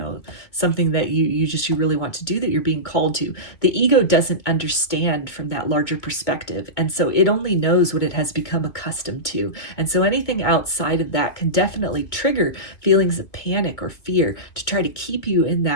something that you really want to do, that you're being called to. The ego doesn't understand from that larger perspective. And so it only knows what it has become accustomed to. And so anything outside of that can definitely trigger feelings of panic or fear to try to keep you in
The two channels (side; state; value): right; late; 2.2 ms